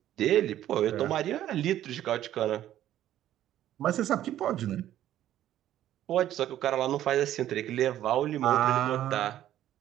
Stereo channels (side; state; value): left; quieter; 12.4 dB